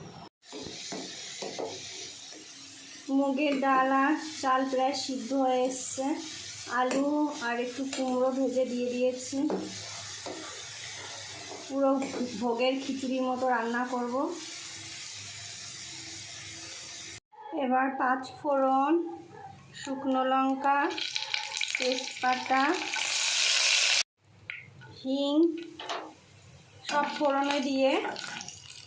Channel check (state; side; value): identical; both; correlation 1.00